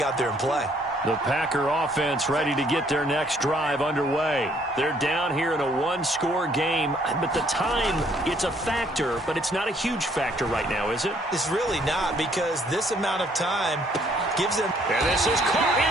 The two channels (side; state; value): both; normal; correlation 0.65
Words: out there and play. The Packer offense ready to get their next drive underway. They're down here in a one-score game, but the time, it's a factor, but it's not a huge factor right now, is it? It's really not, because this amount of time gives them... And this is caught